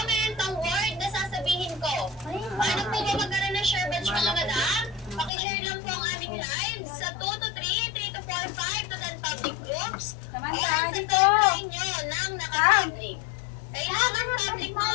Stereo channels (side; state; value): right; drops out; at 5.3 s